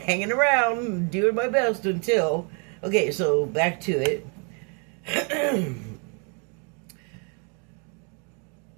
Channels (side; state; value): left; quieter; 36.9 dB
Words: around, doing my best until... Okay, so back to it.